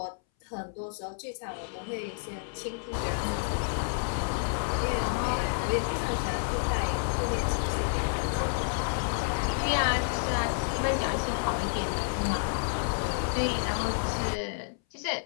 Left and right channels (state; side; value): silent; right; 58 dB below the other